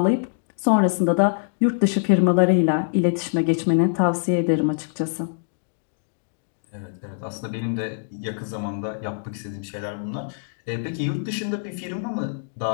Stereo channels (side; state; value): right; silent; digital silence